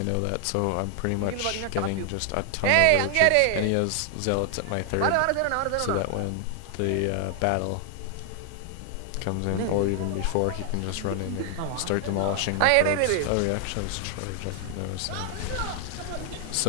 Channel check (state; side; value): different; both; correlation 0.00